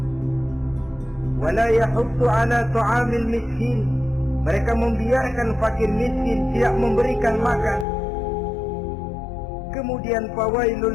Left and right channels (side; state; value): right; drops out; at 7.9 s